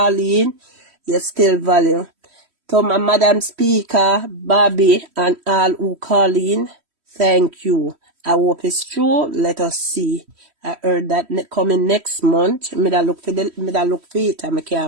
in, you still value. To my Madam Speaker, Bobby, and all who call in, thank you. I hope it's true. Let us see. I heard that coming next month. Me da look for it and I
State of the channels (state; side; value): late; left; 3.1 ms